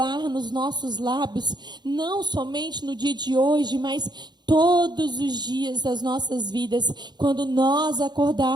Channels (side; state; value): left; late; 0.21 ms